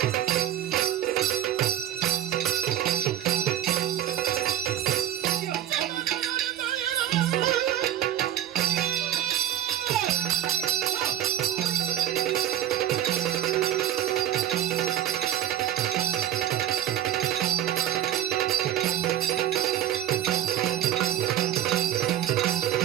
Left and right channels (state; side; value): quieter; left; 11.8 dB